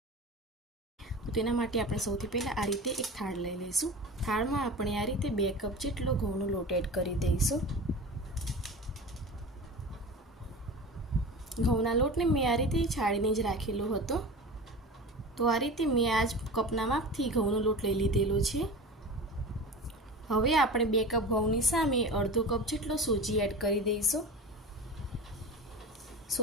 તો તેના માટે આપણે સૌથી પહેલાં આ રીતે એક થાળ લઈ લઈશું. થાળમાં આપણે આ રીતે 2 કપ જેટલો ઘઉંનો લોટ એડ કરી દઈશું. ઘઉંના લોટને મેં આ રીતે છાણીને જ રાખેલો હતો. તો આ રીતે મેં આ જ કપના માપથી ઘઉંનો લોટ લઈ લીધેલો છે. હવે આપણે 2 કપ ઘઉંની સામે અડધો કપ જેટલો સોજી એડ કરી દઈશું.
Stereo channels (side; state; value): both; normal; correlation 0.32